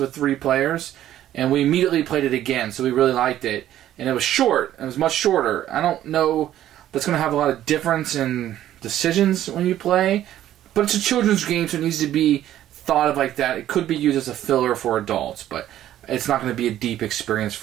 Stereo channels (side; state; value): left; quieter; 12.4 dB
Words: 3 players, and we immediately played it again. So we really liked it, and it was short. It was much shorter. I don't know. That's going to have a lot of difference in decisions when you play, but it's a children's game, so it needs to be thought of like that. It could be used as a filler for adults, but it's not going to be a deep experience